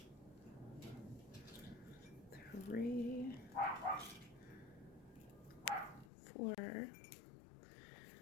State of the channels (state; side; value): drops out; right; at 6.1 s